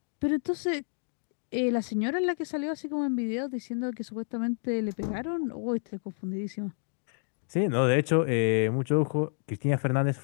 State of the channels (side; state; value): right; silent; digital silence